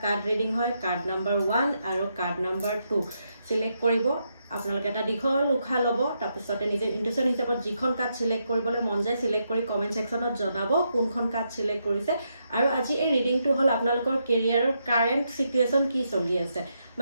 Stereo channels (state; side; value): inverted; both; correlation -0.81